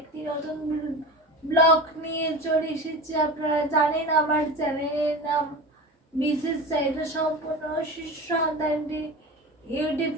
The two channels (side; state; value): both; normal; correlation 0.30